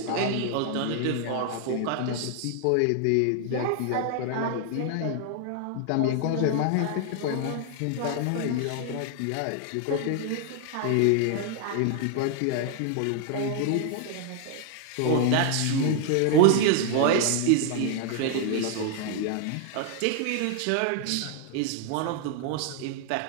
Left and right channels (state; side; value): different; both; correlation 0.00